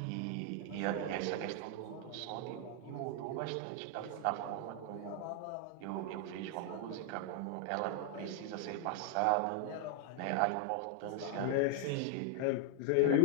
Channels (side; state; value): both; different; correlation 0.00